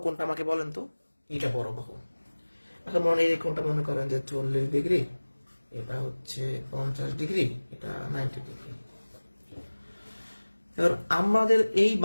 কোনটা আমাকে বলেন তো? এটা বড় বাহু। এখন এই কোনটা মনে করেন যে 40 ডিগ্রি, এটা হচ্ছে 50 ডিগ্রি, এটা 90 ডিগ্রি। এবার আমাদের এই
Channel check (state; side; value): inverted; both; correlation -1.00